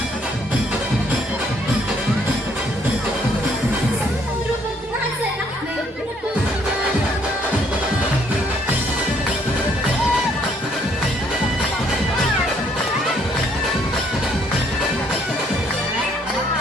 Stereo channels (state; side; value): normal; both; correlation 0.66